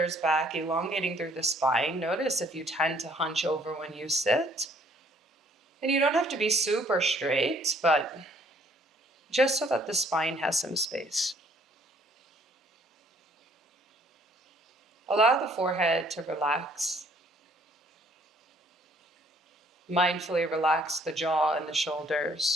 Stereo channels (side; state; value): both; normal; correlation 0.62